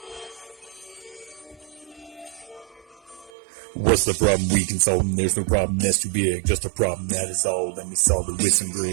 What's the problem? We can solve them. There's no problem that's too big. Just a problem that is all. Let me solve it with some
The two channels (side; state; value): left; drops out; at 3.3 s